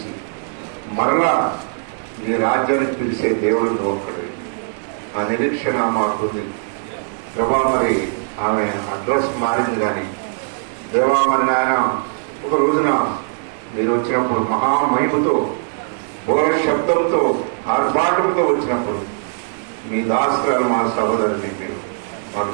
మరలా మీ రాజ్యానికి పిలిచే దేవుడు ఒక్కడే. ఆ నిరీక్షణ మాకుంది ప్రభా. మరి ఆమె అడ్రస్ మారింది, కానీ దేవా మరి నాయన ఒక రోజున మీరు వచ్చినప్పుడు మహామహిమతో బోర శబ్దంతో ఆర్భాటంతో వచ్చినప్పుడు మీ దాసరాలు మా సహోదరుని మీరు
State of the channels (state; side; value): silent; left; 58 dB below the other